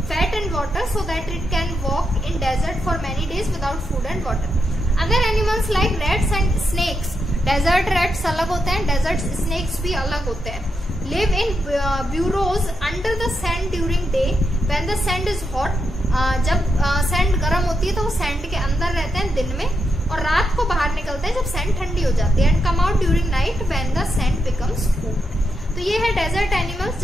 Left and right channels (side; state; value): both; normal; correlation 0.84